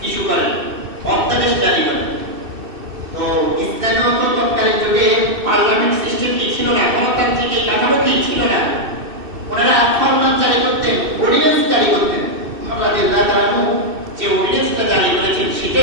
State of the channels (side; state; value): left; late; 2.6 ms